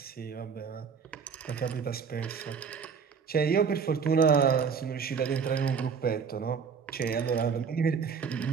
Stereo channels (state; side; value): quieter; left; 6.2 dB